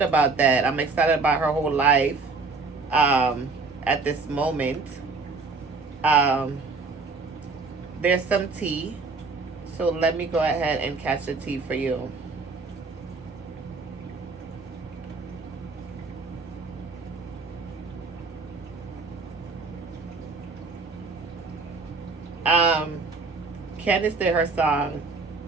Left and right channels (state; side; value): quieter; left; 4.1 dB